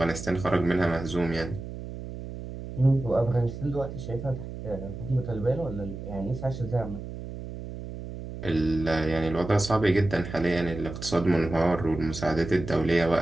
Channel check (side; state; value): right; noise; hum, 10 dB below the sound